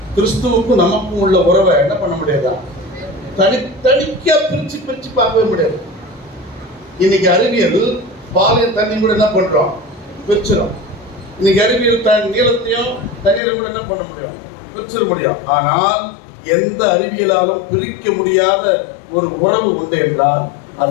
கிறிஸ்துவுக்கும் நமக்கும் உள்ள உறவை என்ன பண்ண முடியாதா, தனித்தனிக்கா பிரிச்சு பிரிச்சு பார்க்கவே முடியாது. இன்னைக்கு அறிவியல் பாலையும் தண்ணி கூட என்ன பண்றோம், பிரிச்சிடும். இன்னைக்கு அறிவியல் நீளத்தையும் தண்ணீரை கூட என்ன பண்ண முடியும், பிரிச்சிட முடியும். ஆனால் எந்த அறிவியலாலும் பிரிக்க முடியாத ஒரு உறவு உண்டு என்றால்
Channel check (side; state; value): right; drops out; at 13.4 s